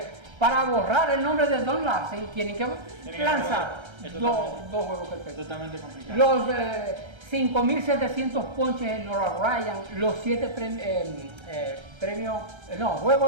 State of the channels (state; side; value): late; left; 1.3 ms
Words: para borrar el nombre de Don Larsen tienen que lanzar dos juegos perfectos. Totalmente complicado. Los 5.700 ponches en Nolan Ryan, los 7